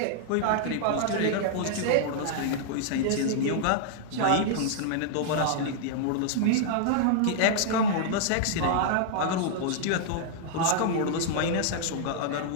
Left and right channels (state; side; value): different; both; correlation -0.01